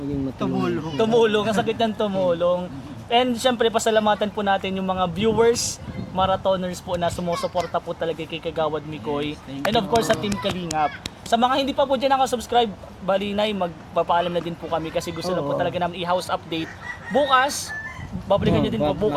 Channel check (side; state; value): both; identical; correlation 1.00